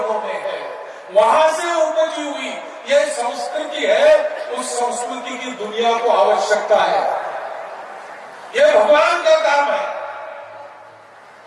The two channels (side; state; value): both; identical; correlation 1.00